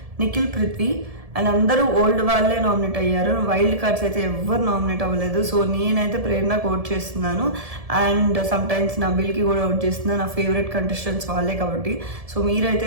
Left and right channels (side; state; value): left; late; 1.7 ms